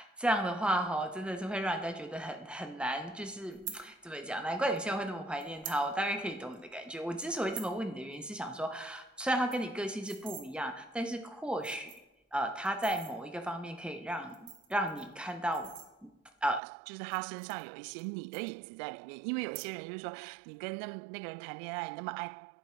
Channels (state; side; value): drops out; left; at 16.6 s